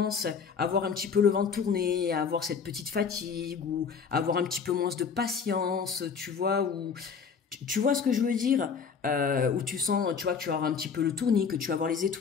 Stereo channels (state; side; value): quieter; right; 6.1 dB